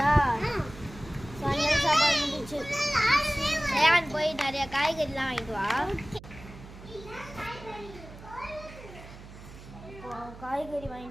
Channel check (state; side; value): noise; right; hum, 17 dB below the sound